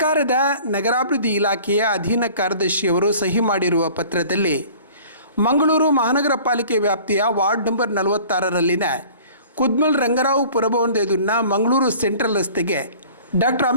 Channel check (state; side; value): inverted; both; correlation -0.47